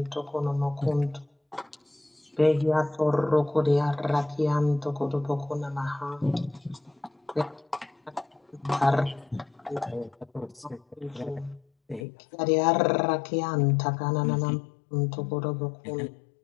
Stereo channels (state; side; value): drops out; right; at 12.1 s